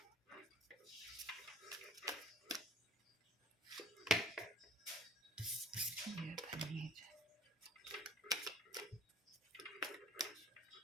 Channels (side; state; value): both; normal; correlation 0.51